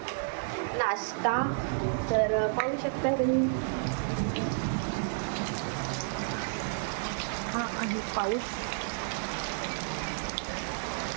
नाश्ता. तर पाहू शकता तुम्ही, हा आहे पाऊस.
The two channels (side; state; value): left; silent; digital silence